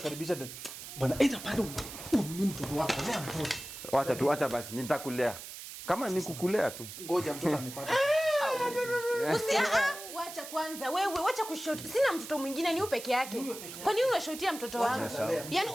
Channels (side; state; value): right; noise; hiss, 11 dB below the sound